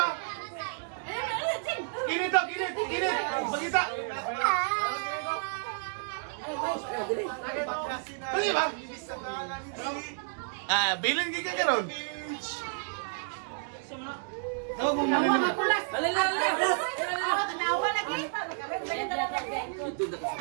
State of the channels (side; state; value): left; silent; digital silence